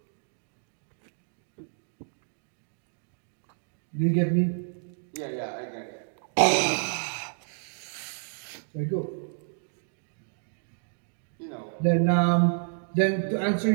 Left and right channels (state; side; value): silent; left; digital silence